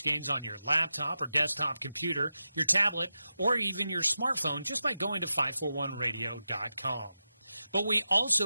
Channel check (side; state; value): both; inverted; correlation -0.90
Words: on your laptop or desktop computer, your tablet, or even your smartphone just by going to 541radio.com. But we